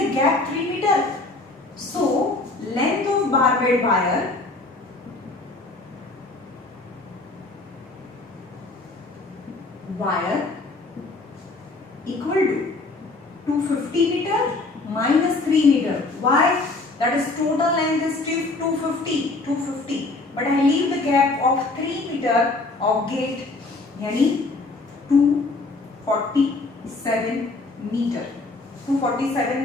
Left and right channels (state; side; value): quieter; right; 3.3 dB